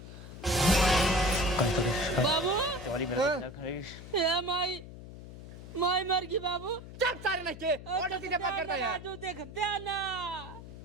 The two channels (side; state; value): left; noise; hum, 14 dB below the sound